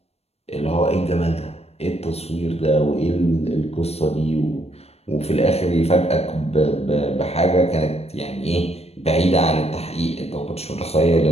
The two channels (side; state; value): right; late; 0.30 ms